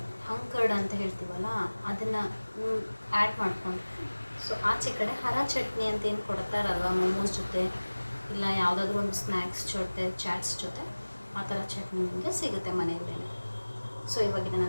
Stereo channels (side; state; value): both; inverted; correlation -1.00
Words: ಹಂಕರ್ಡ್ ಅಂತ ಹೇಳ್ತೀವಲ್ಲ ಅದನ್ನು ಆ್ಯಡ್ ಮಾಡ್ಕೊಂಡು, ಸೊ ಆಚೆ ಕಡೆ ಹರ ಚಟ್ನಿ ಅಂತ ಏನು ಕೊಡ್ತಾರಲ್ವ ಮೋಮೋಸ್ ಜೊತೆ ಇಲ್ಲ ಯಾವುದಾದ್ರೂ ಒಂದು ಸ್ನ್ಯಾಕ್ಸ್ ಜೊತೆ ಚಾಟ್ಸ್ ಜೊತೆ ಆ ಥರ ಚಟ್ನಿ ನಿಮಗೆ ಸಿಗುತ್ತೆ ಮನೆಯಲ್ಲೇ. ಸೊ ಇವಾಗ ಇದನ್ನು